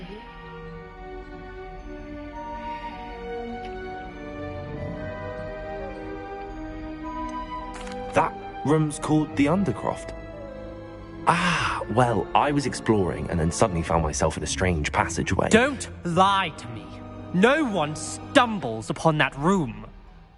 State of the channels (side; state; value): both; identical; correlation 1.00